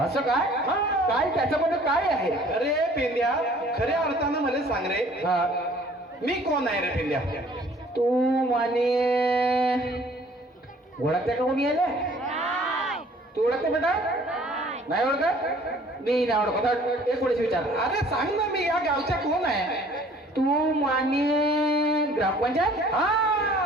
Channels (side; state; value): both; normal; correlation 0.54